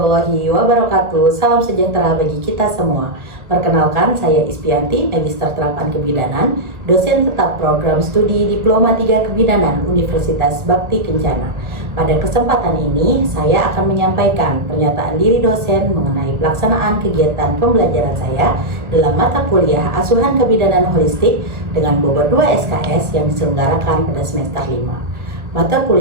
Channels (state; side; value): late; left; 1.2 ms